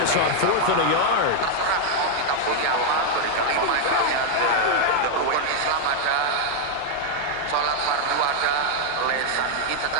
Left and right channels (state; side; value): different; both; correlation 0.00